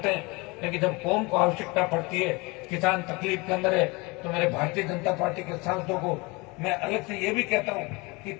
हैं, लेकिन जब कौम को आवश्यकता पड़ती है, किसान तकलीफ के अंदर है, तो मेरे भारतीय जनता पार्टी के सांसदों को मैं अलग से ये भी कहता हूँ कि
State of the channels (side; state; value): right; quieter; 26.0 dB